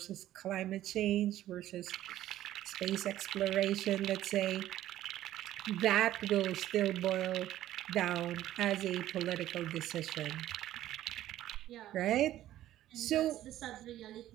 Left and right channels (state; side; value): quieter; left; 13.4 dB